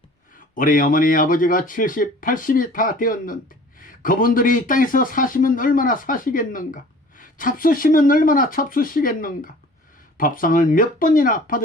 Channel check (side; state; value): both; normal; correlation 0.47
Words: 우리 어머니 아버지가 70, 80이 다 되었는데 그분들이 이 땅에서 사시면 얼마나 사시겠는가? 잡수시면 얼마나 잡수시겠는가? 밥상을 몇 번이나